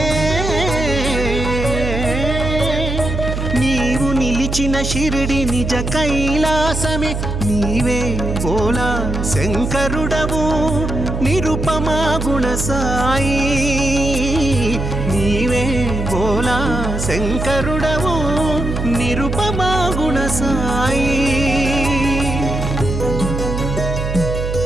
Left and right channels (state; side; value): noise; right; hum, 3 dB below the sound